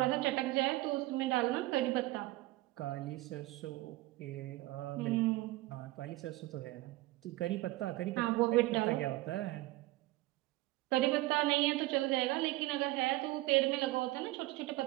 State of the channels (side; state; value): left; quieter; 18.8 dB